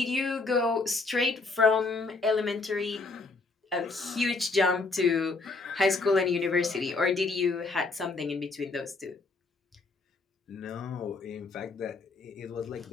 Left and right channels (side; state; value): right; quieter; 3.7 dB